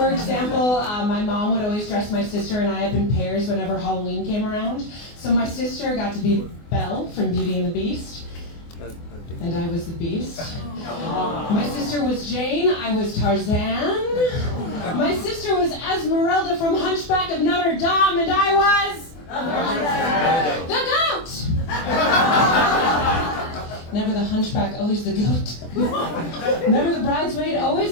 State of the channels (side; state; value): right; late; 24 ms